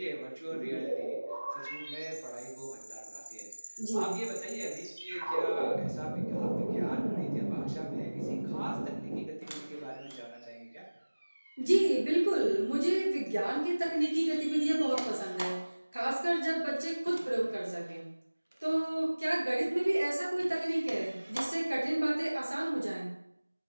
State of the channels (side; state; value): both; inverted; correlation -1.00